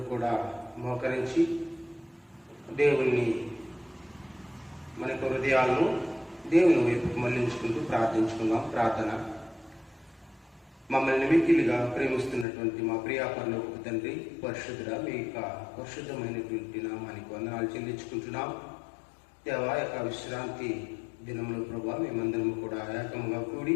కూడా మోకరించి దేవుణ్ణి మన యొక్క హృదయాలను దేవుని వైపుకు మళ్లించుకుంటూ ప్రార్థించుకుందాం. ప్రార్థన. మమ్మల్ని మిక్కిలిగా ప్రేమిస్తున్నటువంటి మా ప్రియాపరలోక తండ్రి, పరిశుద్ధుడా, మీ యొక్క పరిశుద్ధమైనటువంటి నామానికి వందనాలు చెల్లించుకుంటున్నాం. దేవా, యొక్క విశ్రాంతి దినంలో ప్రభా మేమందరం కూడా ఏకంగా కూడి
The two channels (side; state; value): right; drops out; at 12.5 s